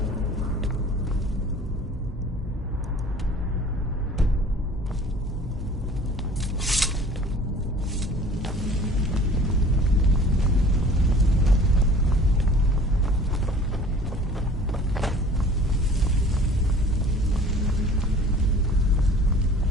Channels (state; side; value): normal; both; correlation 0.47